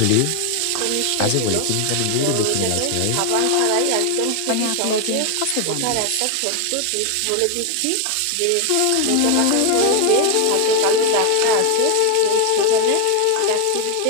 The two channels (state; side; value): different; both; correlation 0.01